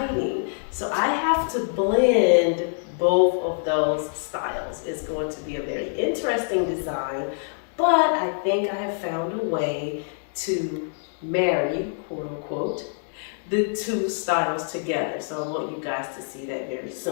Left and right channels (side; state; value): right; silent; 62 dB below the other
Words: So I have to blend both of those styles. It's going to be a very interesting design, but I think I have found a way to marry, quote unquote, the two styles together. So I want you guys to see that very